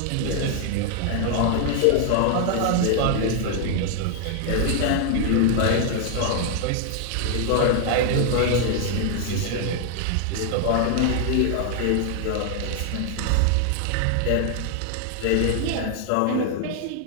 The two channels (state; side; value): different; both; correlation 0.00